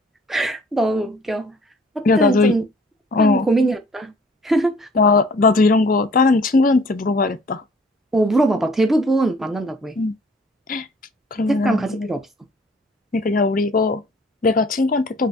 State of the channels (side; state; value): both; normal; correlation 0.54